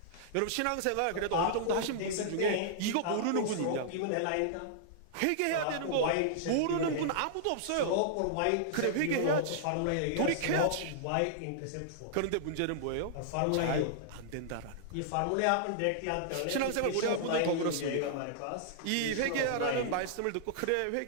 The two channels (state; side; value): different; both; correlation -0.01